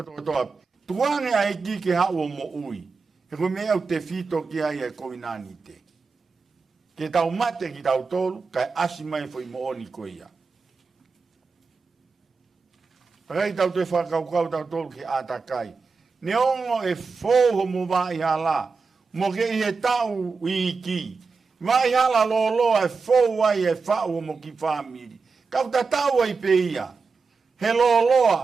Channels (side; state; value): left; quieter; 4.7 dB